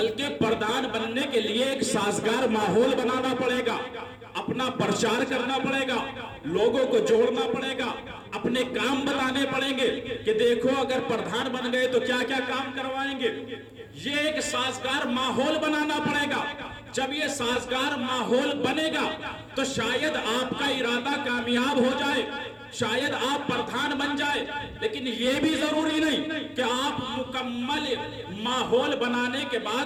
پردھان بننے کے لیے ایک سازگار ماحول بنانا پڑے گا، اپنا پرچار کرنا پڑے گا، لوگوں کو جوڑنا پڑے گا، اپنے کام بتانے پڑیں گے کہ دیکھو اگر پردھان بن گئے تو کیا کیا کام کروائیں گے۔ یہ ایک سازگار ماحول بنانا پڑے گا۔ جب یہ سازگار ماحول بنے گا تو شاید آپ کا ارادہ کامیاب ہو جائے، شاید آپ پردھان بن جائے، لیکن یہ بھی ضروری نہیں کہ آپ مکمل ماحول بنانے کے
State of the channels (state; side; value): identical; both; correlation 1.00